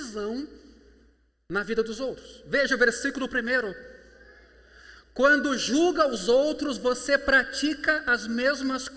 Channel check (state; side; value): identical; both; correlation 1.00